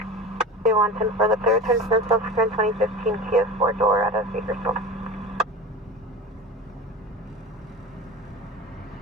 for the third turn for subsequent 2015 Kia 4-door out of Bakersfield.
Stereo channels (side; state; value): both; normal; correlation 0.31